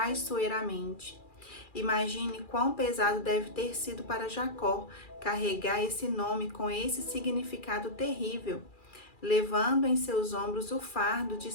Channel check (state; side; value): late; right; 2.4 ms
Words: Imagine quão pesado deve ter sido para Jacó carregar esse nome com esse significado terrível, levando em seus ombros o fardo de